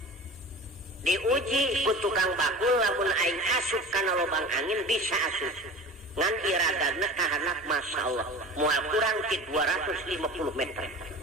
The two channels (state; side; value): normal; both; correlation 0.36